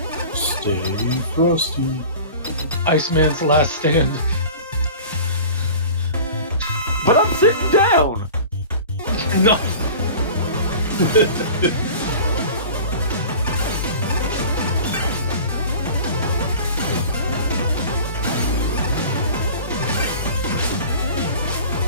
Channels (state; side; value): inverted; both; correlation -0.39